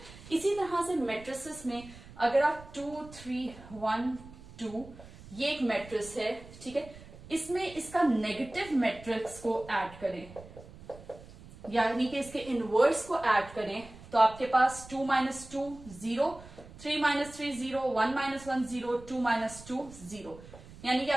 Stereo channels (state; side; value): noise; right; rumble, 18 dB below the sound